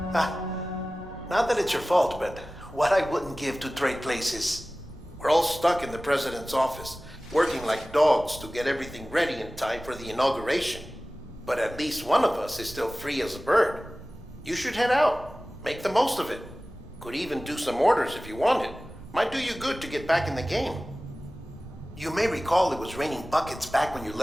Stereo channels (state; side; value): noise; right; rumble, 19 dB below the sound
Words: Not that it's your fault, but what I wouldn't give to trade places. We're all stuck in the president's office, working like dogs to get everything ready in time for the inauguration. But at least one of us is still free as a bird. You should head out. Make the most of it. Could even do some orders if you wanted. Might do you good to get back in the game. You may recall it was raining buckets back when you